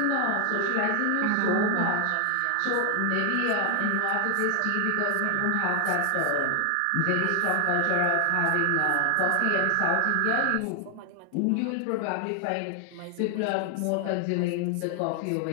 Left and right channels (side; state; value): both; different; correlation 0.00